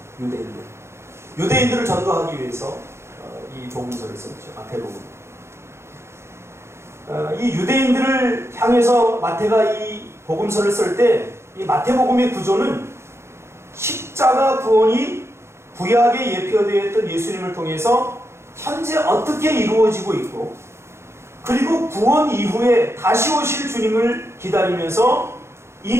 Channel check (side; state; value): left; late; 0.13 ms